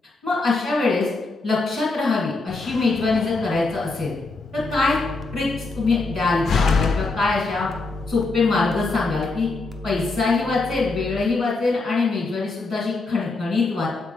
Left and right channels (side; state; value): right; quieter; 3.5 dB